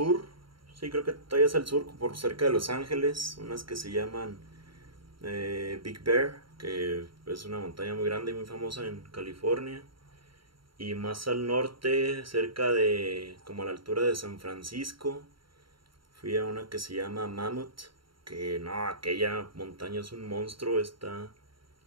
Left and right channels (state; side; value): late; left; 0.73 ms